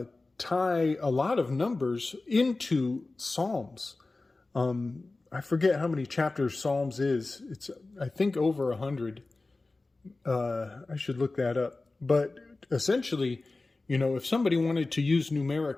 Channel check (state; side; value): quieter; right; 3.3 dB